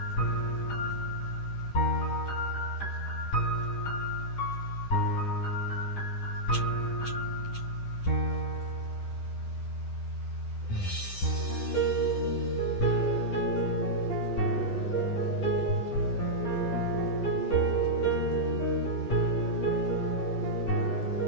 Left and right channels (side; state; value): right; late; 10 ms